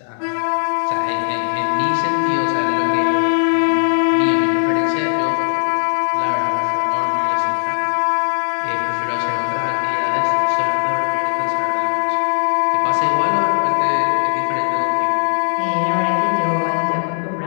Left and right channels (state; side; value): silent; right; digital silence